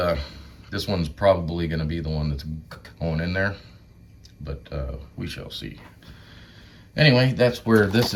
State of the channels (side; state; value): both; identical; correlation 1.00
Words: this one's probably going to be the one that's going in there, but we shall see. Anyway, that's where this